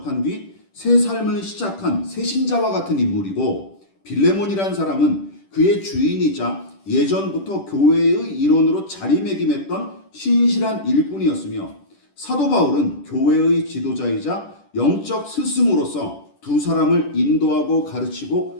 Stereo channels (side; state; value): right; late; 10 ms